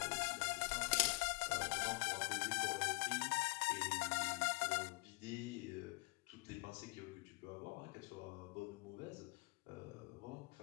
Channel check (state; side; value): quieter; right; 26.2 dB